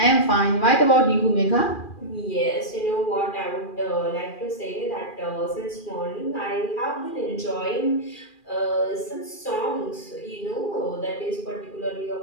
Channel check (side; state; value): right; late; 2.4 ms